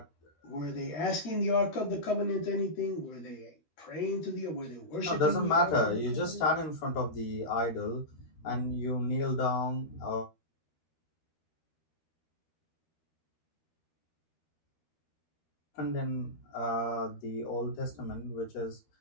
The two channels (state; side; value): late; right; 13 ms